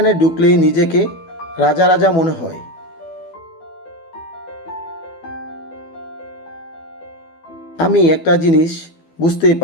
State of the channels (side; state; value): right; late; 12 ms